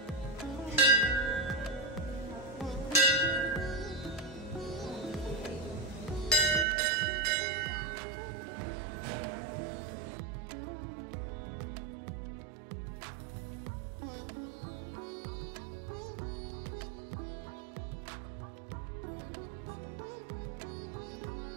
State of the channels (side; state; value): left; drops out; at 6.7 s